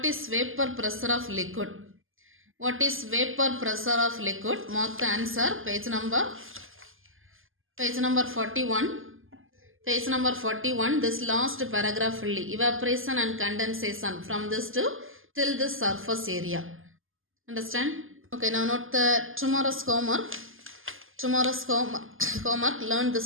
is vapor pressure of liquid? What is vapor pressure of liquid? Mark the answer. Page number 41. Page number 41, this last paragraph fully. Evaporation and condensation from this to till this surface area. Understand? Okay, now note the tomorrow's homework. Tomorrow's homework, learn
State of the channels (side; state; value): left; late; 0.59 ms